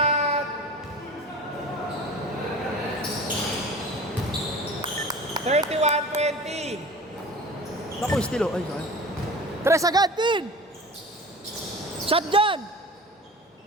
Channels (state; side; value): normal; both; correlation 0.38